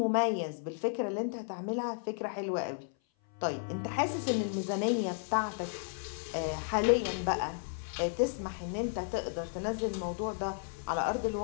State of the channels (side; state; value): right; silent; 55 dB below the other